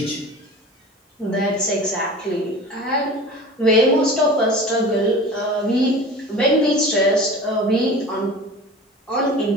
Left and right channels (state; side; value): normal; both; correlation 0.38